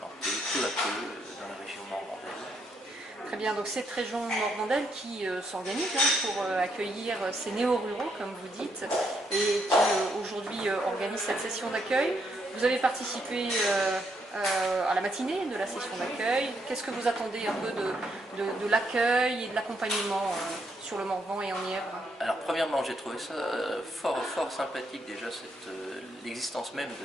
peu à peu dans la région morvandaise. Très bien, donc cette région morvandaise qui s'organise pour accueillir ces néo-ruraux, comme vous dites, et qui aujourd'hui organise cette session d'accueil. Vous avez participé à la matinée de la session d'accueil. Qu'est-ce que vous attendez un peu de l'accueil et de l'accompagnement sur le Morvan et en Nièvre? Alors premièrement, j'ai trouvé ça fort sympathique déjà, l'existence même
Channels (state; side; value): normal; both; correlation 0.76